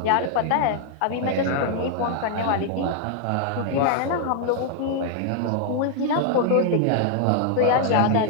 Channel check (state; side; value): different; both; correlation 0.00